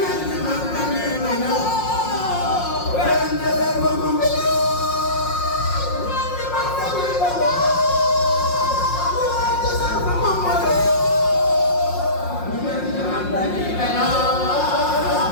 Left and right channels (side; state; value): right; late; 5.6 ms